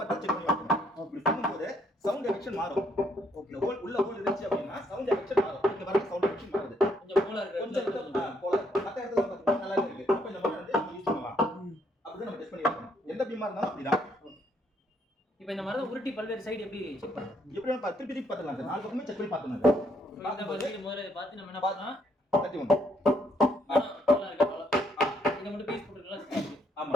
செக் பண்ணி வைக்கணும். அப்படி பண்ணும்போது சவுண்ட் எஃபெக்ஷன் மாறும். ஓகே, ஹோல் உள்ள ஹோல் இருந்துச்சு அப்படின்னா சவுண்ட் எஃபெக்ஷன் மாறும். இங்கே வர சவுண்ட் எஃபெக்ஷன் மாறுது. கொஞ்சம் போல இருக்கு, கொஞ்சம் போல மற்ற இடத்துல பார்த்தீங்கன்னா நல்லா இருக்கு. அப்போ இந்த மாதிரி வந்து நம்ம யூஸ் பண்ணலாம். அப்படி நம்ம டெஸ்ட் பண்ணி வைக்கணும். எந்த பீமா இருந்தாலும் அப்படிதான். இப்போ இந்த மரத்தை உருட்டி பல்வேறு சைடு எப்படி செக் பண்ணணும்? எப்படி நம்ம திருப்பி திருப்பி பார்த்துக்கலாம் சார். நாலு பக்கமே செக் பண்ணி பார்த்துக்கலாம். இந்த பல்வேறு முதல்ல பார்த்து நம்ம என்ன பண்ணலாம், தட்டி ஒன்று நல்லா இருக்கு அவ்வளோ. இதை மட்டும் பீஸ் போட்டுருக்கலாம்.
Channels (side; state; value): both; normal; correlation 0.70